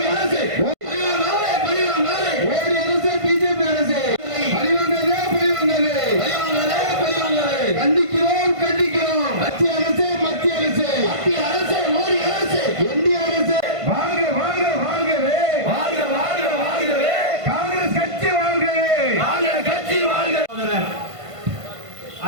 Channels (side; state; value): left; late; 1.5 ms